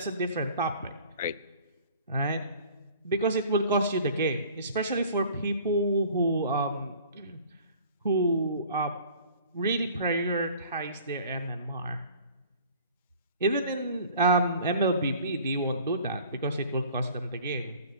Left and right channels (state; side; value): inverted; both; correlation -0.49